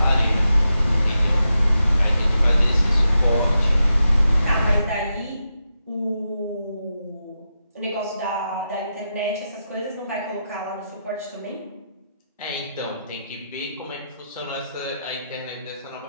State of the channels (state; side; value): inverted; both; correlation -0.87